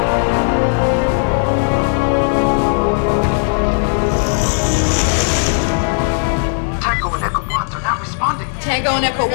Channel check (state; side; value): silent; right; 58 dB below the other